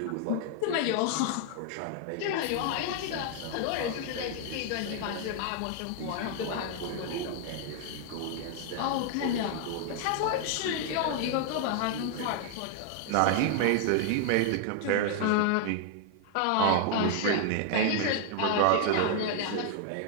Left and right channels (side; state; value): both; different; correlation 0.00